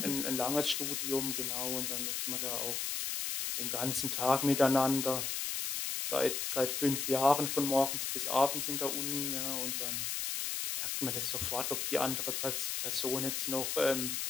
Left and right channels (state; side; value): noise; left; hiss, 1 dB below the sound